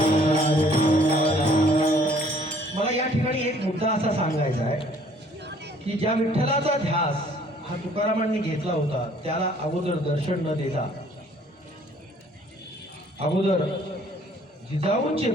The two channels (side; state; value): both; normal; correlation 0.58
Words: मला या ठिकाणी एक मुद्दा असा सांगायचा आहे की ज्या विठ्ठलाचा ध्यास हा तुकारामांनी घेतला होता त्याला अगोदर दर्शन न देता अगोदर जिजाऊंचे